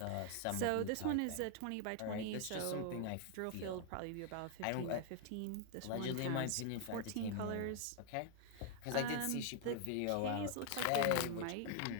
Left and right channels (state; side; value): different; both; correlation 0.00